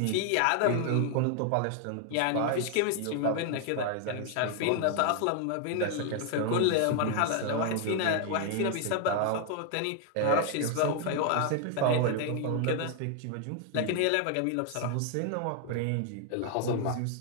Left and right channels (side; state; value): both; different; correlation 0.00